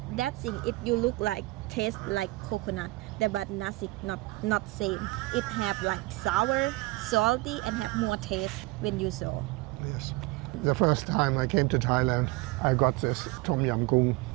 that thing you look like taste like coconut, but nothing, not same. It have like sour, salty, and have more taste when you saw. Yes. The first time I came to Thailand, I got this tom yam goong,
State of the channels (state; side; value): quieter; left; 21.6 dB